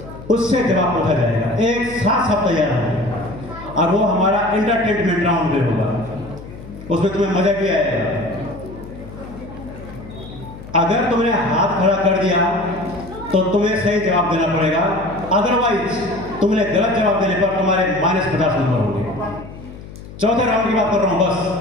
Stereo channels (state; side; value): noise; left; hum, 15 dB below the sound